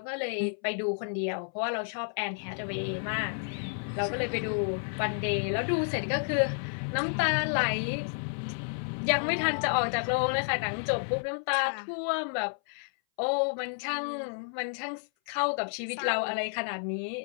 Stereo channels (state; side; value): silent; right; 57 dB below the other